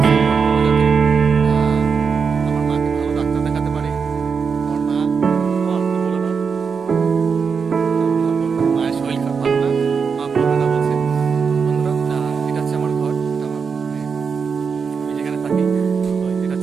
সাপোর্ট করো যাতে আমার মাকে ভালো ডাক্তার দেখাতে পারি। আমার মা বলে না, মায়ের শরীর খারাপ ভালো না, মা বলবে না বলছে। বন্ধুরা, এটা হচ্ছে আমার ঘর, এটা আমার আমি যেখানে থাকি, এটা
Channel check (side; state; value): left; quieter; 5.8 dB